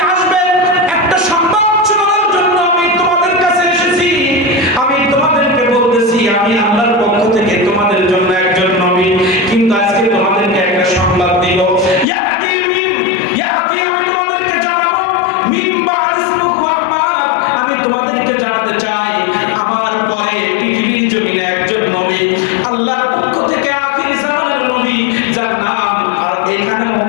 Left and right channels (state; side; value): drops out; right; at 12.1 s